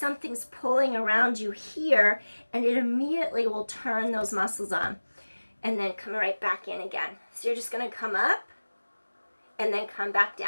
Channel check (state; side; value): inverted; both; correlation -1.00